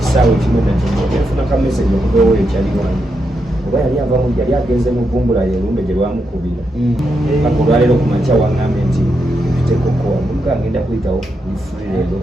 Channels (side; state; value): both; normal; correlation 0.84